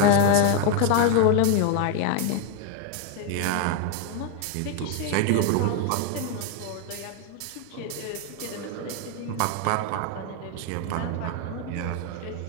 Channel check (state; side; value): different; both; correlation 0.01